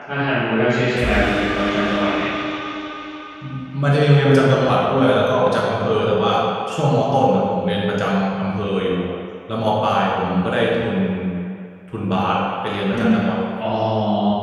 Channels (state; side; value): identical; both; correlation 1.00